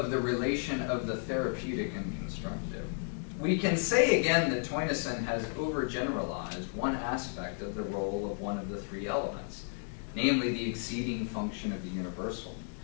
the relation of the therapeutic and constructive, we can say again that Theunissen has overgeneralized one aspect of the role of one of the three elements, namely the exceeding function of the universal.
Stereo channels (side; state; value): right; silent; 56 dB below the other